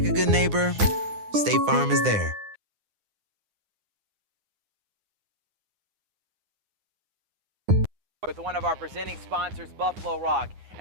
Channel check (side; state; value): left; late; 9.8 ms